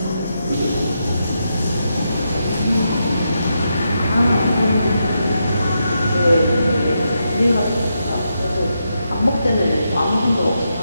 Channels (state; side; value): inverted; both; correlation -0.83